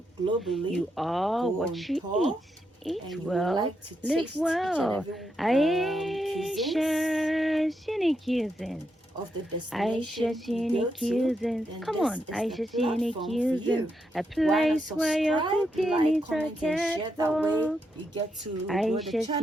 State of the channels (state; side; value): normal; both; correlation 0.82